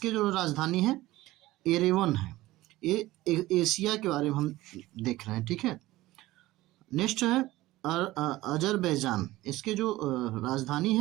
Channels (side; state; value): left; quieter; 17.5 dB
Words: जो राजधानी है एरेवन है। ये एशिया के बारे में हम देख रहे हैं। ठीक है, नेक्स्ट है अजरबैजान, इसके जो राजधानी